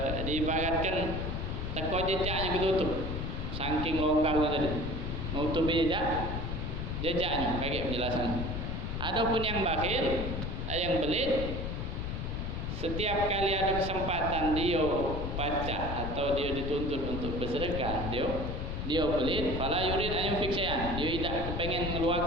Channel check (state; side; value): noise; left; rumble, 3 dB below the sound